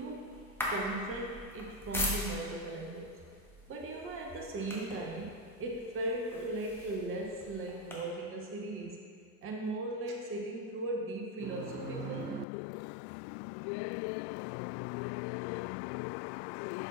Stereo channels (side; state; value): right; drops out; at 12.5 s